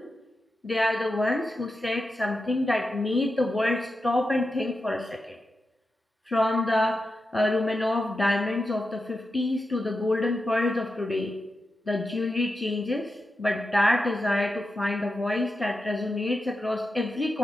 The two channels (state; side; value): normal; both; correlation 0.90